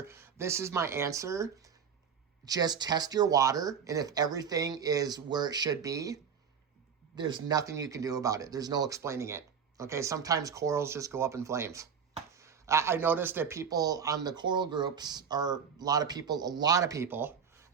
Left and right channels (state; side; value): quieter; left; 7.0 dB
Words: This is my answer. Just test your water, and if everything is where it should be, there's nothing you can do about it. There's no explaining it. Okay, sometimes corals just go up in flames. I noticed that people on the coral groups are a lot of people,